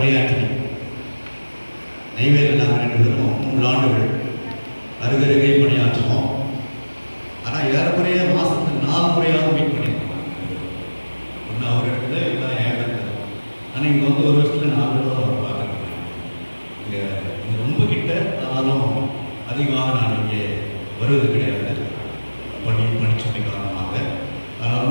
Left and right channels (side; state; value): both; inverted; correlation -1.00